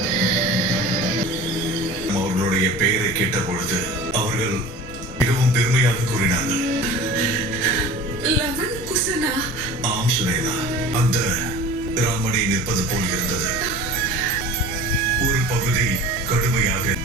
அவர்களுடைய பெயரை கேட்ட பொழுது அவர்கள் மிகவும் பெருமையாக கூறினார்கள். லவன் குசனா? ஆம் சுனேனா, அந்த ராமனை நிற்பது போல் இருந்தது. ஒரு பகுதி கடுமையாக,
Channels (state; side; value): normal; both; correlation 0.39